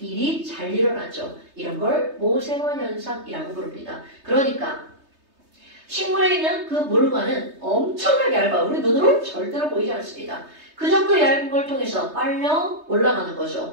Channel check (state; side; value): late; left; 3.2 ms